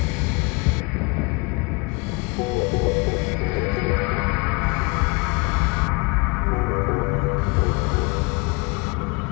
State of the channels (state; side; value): quieter; right; 28.4 dB